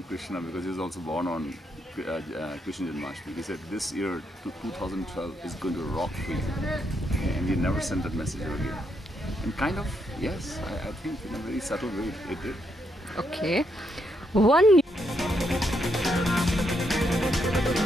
Krishna because he was also born on Krishna Janmashtami. He said this year, 2012, is going to rock for you. And he never sent that message again. And kind of, yes, I think in a very subtle way it did. Okay. One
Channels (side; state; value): both; normal; correlation 0.78